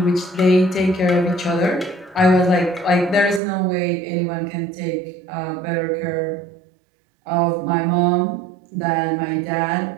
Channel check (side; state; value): left; drops out; at 3.4 s